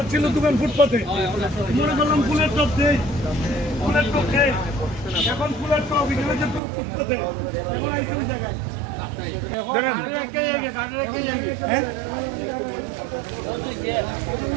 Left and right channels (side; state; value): left; drops out; at 6.6 s